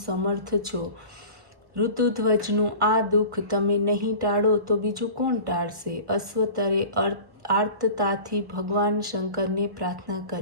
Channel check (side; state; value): left; late; 1.3 ms